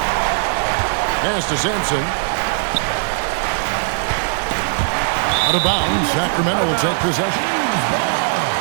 Pass to Simpson. Out of bounds, Sacramento will take possession.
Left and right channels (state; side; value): silent; left; digital silence